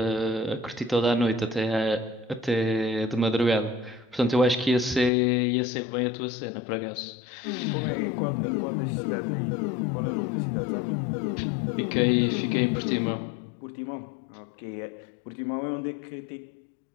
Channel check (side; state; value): right; drops out; at 5.1 s